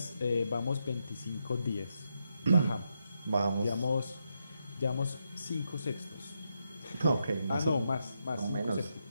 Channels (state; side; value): inverted; both; correlation -0.82